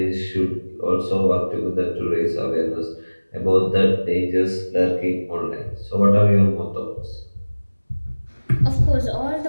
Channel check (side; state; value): both; inverted; correlation -1.00